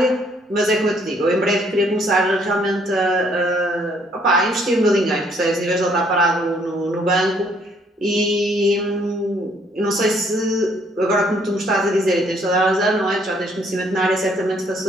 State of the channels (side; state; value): both; normal; correlation 0.66